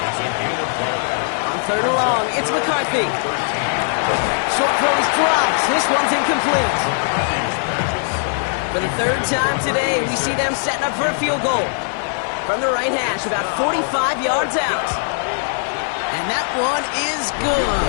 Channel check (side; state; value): right; silent; 61 dB below the other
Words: On 3rd and long, it's McCarthy. Short throws drops. This one's incomplete. For the 3rd time today, we see them setting up for a field goal. From the right hash, about 45 yards out. And that one is good.